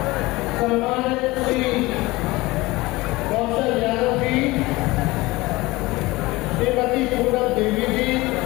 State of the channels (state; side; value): quieter; right; 20.9 dB